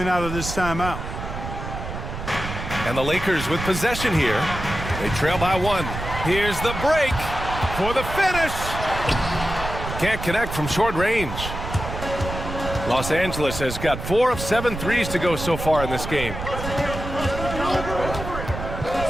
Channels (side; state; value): right; noise; rumble, 7 dB below the sound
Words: out of this timeout. And the Lakers with possession here. They trail by 1. Here's the break for the finish. Can't connect from short range. Los Angeles has got 4 of 7 threes to go so far in this game.